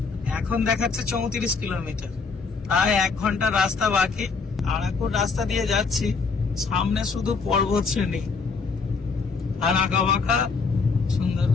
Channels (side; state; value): right; quieter; 4.8 dB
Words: এখন দেখাচ্ছে 34 কিলোমিটার। প্রায় 1 ঘন্টা রাস্তা বাকি। আরাকুর রাস্তা দিয়ে যাচ্ছি, সামনে শুধু পর্বত শ্রেণী আর আঁকা বাঁকা সুন্দর